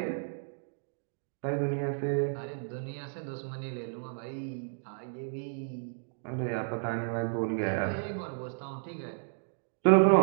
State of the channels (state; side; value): silent; left; digital silence